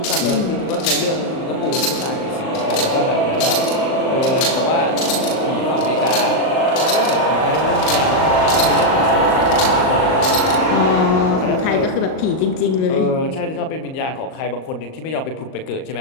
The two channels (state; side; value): late; right; 38 ms